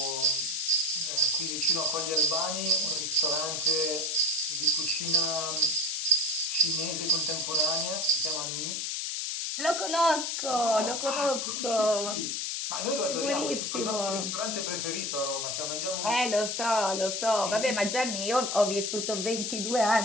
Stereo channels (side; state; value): left; noise; hiss, 2 dB below the sound